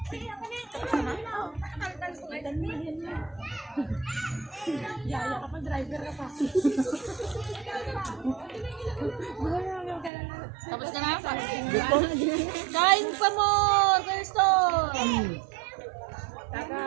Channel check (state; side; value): drops out; left; at 10.1 s